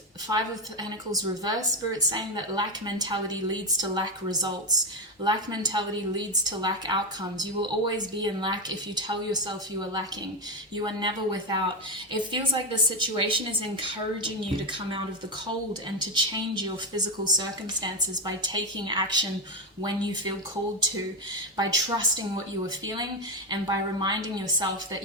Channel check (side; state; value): both; normal; correlation 0.09